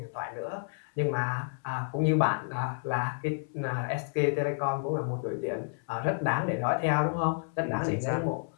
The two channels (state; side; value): silent; right; 58 dB below the other